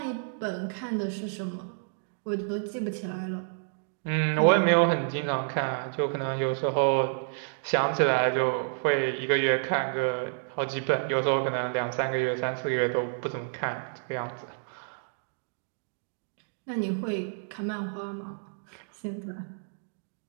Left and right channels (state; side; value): silent; left; digital silence